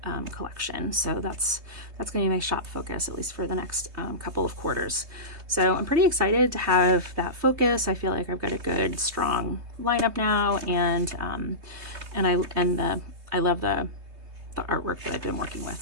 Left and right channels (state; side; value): late; left; 3.2 ms